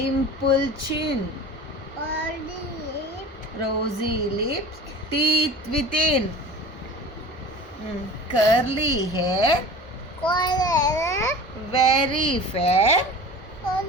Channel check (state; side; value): normal; both; correlation 0.38